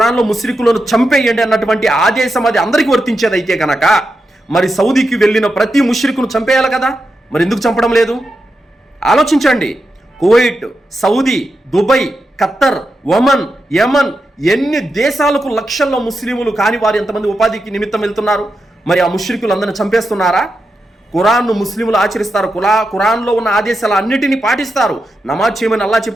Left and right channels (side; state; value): both; normal; correlation 0.87